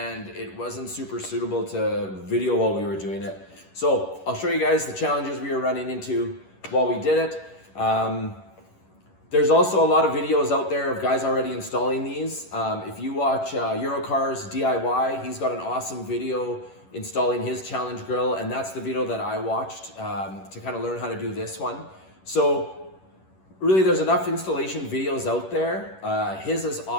it wasn't super suitable to video while we were doing it. So I'll show you guys the challenges we were running into while we did it. There's also a lot of videos out there of guys already installing these. If you watch Eurocars DIY, he's got an awesome video installing his Challenge Grille, and that's the video that I watched to kind of learn how to do this one. So really, there's enough installation videos out there. His is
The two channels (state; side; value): late; right; 11 ms